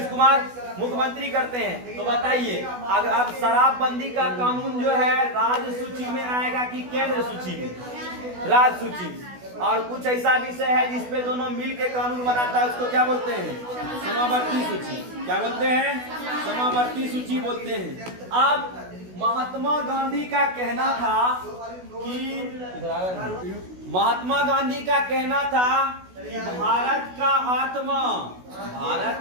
कुमार मुख्यमंत्री करते हैं। तो बताइए अगर अब शराबबंदी का कानून जो है राज्य सूची में आएगा कि केंद्र सूची में? राज्य सूची में। और कुछ ऐसा विषय है जिसपे दोनों मिल के कानून बनाता है, उसको क्या बोलते हैं? समावर्ती सूची। क्या बोलते हैं? समावर्ती सूची बोलते हैं। अब महात्मा गांधी का कहना था कि भारत का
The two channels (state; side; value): late; left; 16 ms